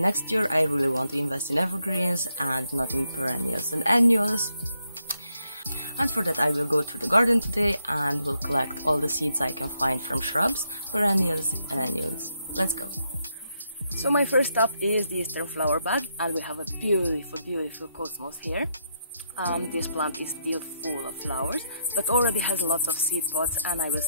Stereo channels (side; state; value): both; inverted; correlation -0.79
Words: year I really want to invest in evergreens and not in perennials and annuals. And for that I will go through the garden today and will collect all the seeds I can find from shrubs, perennials and annuals. Let's go! So my first stop is the eastern flower bed, and we have a beautiful cosmos here. This plant is still full of flowers, but already has lots of seed pods, and I will